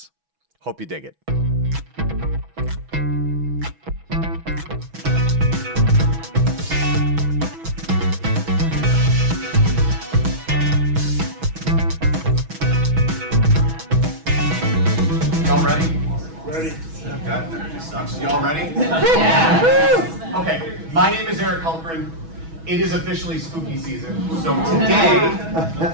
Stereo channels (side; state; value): left; late; 6.1 ms